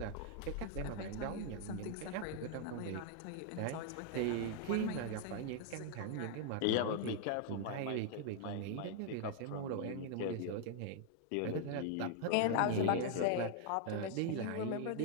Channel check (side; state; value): both; different; correlation 0.00